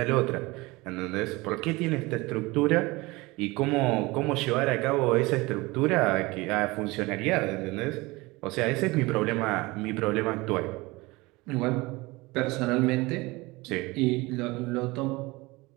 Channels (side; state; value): left; quieter; 22.5 dB